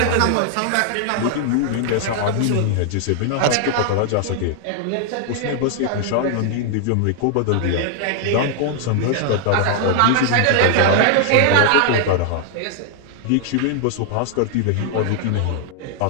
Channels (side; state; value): both; different; correlation 0.00